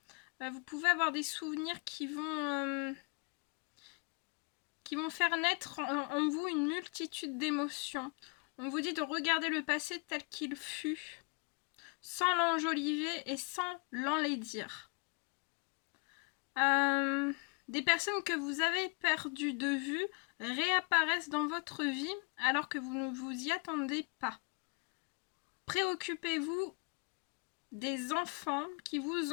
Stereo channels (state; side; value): quieter; right; 34.0 dB